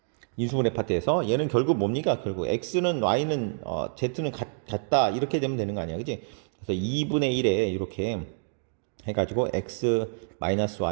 인수분해 파트에서 얘는 결국 뭡니까? 결국 X는 Y는 Z는 같다 이렇게 되면 되는 거 아니야, 그지? 그래서 2분의 1에 이렇게 해가지고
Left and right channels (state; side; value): silent; left; digital silence